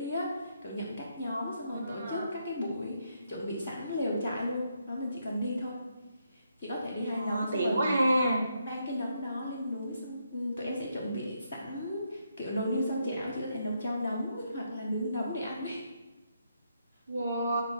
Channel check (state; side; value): inverted; both; correlation -0.78